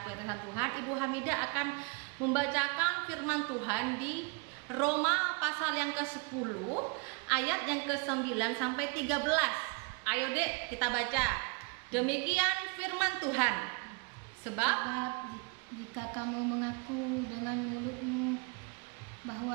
yang teman Tuhan, Ibu Hamidah akan membacakan firman Tuhan di Roma pasal yang ke-10 ayat yang ke-9 sampai 13. Ayo Dek, kita baca. Demikian firman Tuhan. Sebab jika kamu mengaku dengan mulutmu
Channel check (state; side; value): quieter; left; 31.5 dB